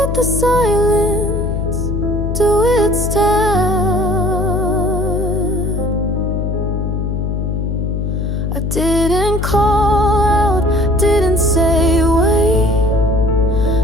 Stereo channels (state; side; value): noise; left; hum, 1 dB below the sound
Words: the silence do its task. I didn't call out, didn't say wait,